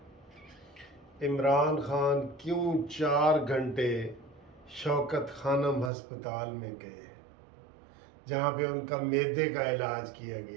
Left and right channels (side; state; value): left; drops out; at 5.9 s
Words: عمران خان کیوں 4 گھنٹے شوکت خانم ہسپتال میں گئے جہاں پہ ان کا معدے کا علاج کیا